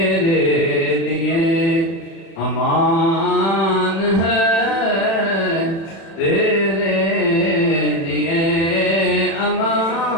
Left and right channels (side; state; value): right; late; 36 ms